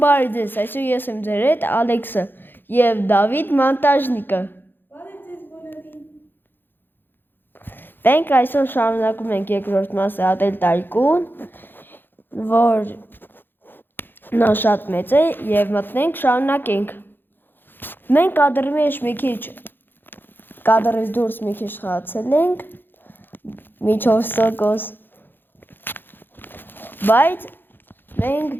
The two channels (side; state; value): right; late; 0.098 ms